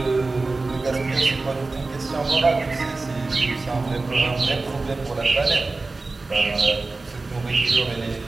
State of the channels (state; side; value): quieter; left; 3.5 dB